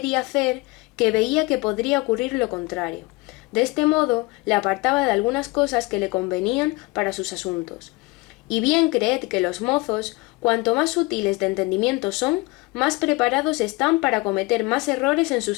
hacer, que veía que podría ocurrir lo contrario. De este modo le apartaba de algunas cosas que le convenían para sus asuntos. Y bien creed que los mozos, cuanto más sutiles de entendimiento son, más preparados están para cometer más errores en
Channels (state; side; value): quieter; right; 24.0 dB